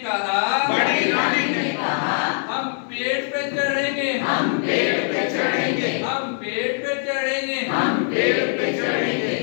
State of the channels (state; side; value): silent; right; digital silence